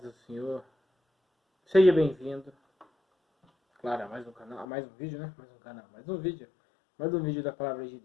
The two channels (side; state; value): right; drops out; at 4.7 s